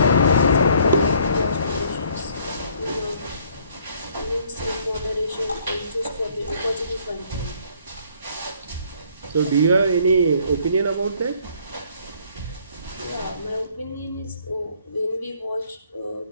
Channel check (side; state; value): both; inverted; correlation -0.62